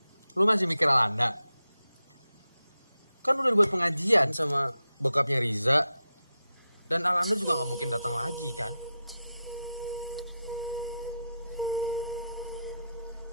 Lu masih mikir Alanda? Kan udah dibuat pengajian sama bokapnya Riza. Dan Alanda juga gak mungkin datang lagi kan?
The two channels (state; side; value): inverted; both; correlation -0.89